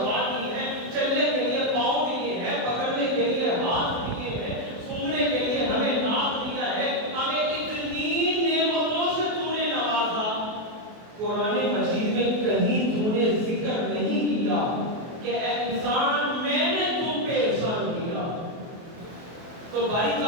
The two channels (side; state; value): left; late; 24 ms